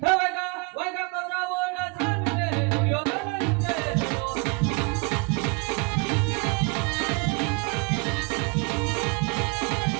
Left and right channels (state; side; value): quieter; left; 31.5 dB